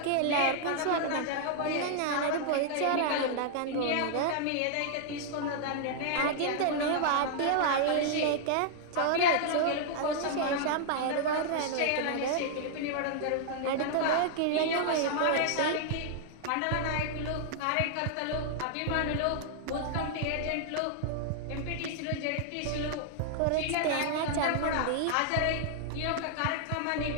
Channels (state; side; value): different; both; correlation -0.01